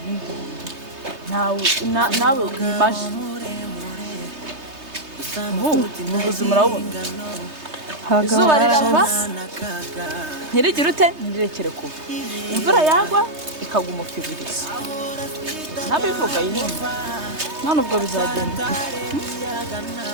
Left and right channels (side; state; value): left; late; 3.3 ms